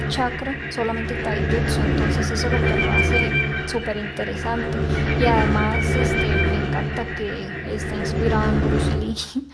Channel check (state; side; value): identical; both; correlation 1.00